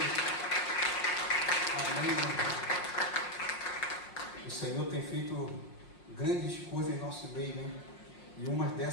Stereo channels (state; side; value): late; right; 5.5 ms